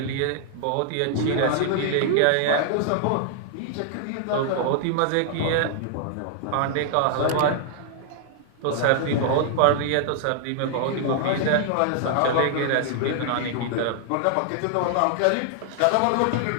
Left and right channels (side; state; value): both; different; correlation -0.01